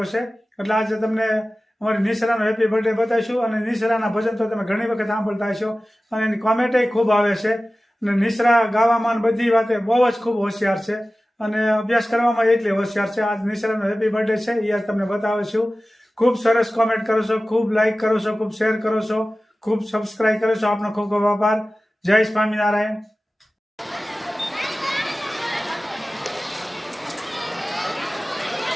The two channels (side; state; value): both; normal; correlation 0.96